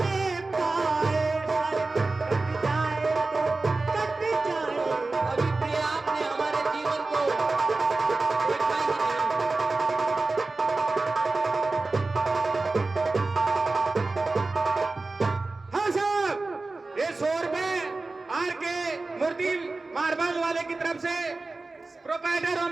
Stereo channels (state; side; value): quieter; left; 3.5 dB